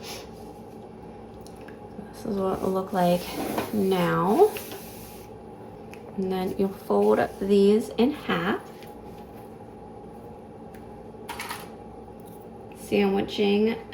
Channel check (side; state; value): both; identical; correlation 1.00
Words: This is what it will look like now. And then you'll fold these in half, sandwiching